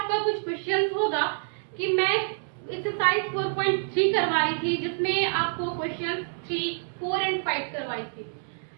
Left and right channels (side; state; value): left; silent; digital silence